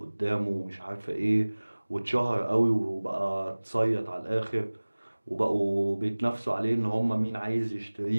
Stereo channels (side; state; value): both; inverted; correlation -1.00